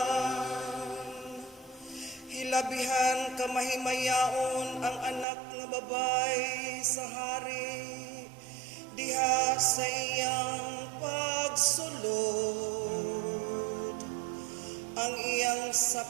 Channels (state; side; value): drops out; left; at 5.2 s